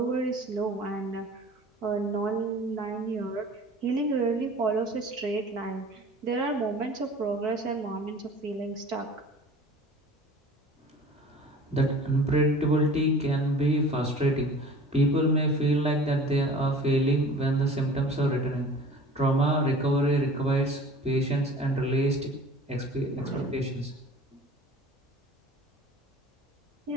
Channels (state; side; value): normal; both; correlation 0.44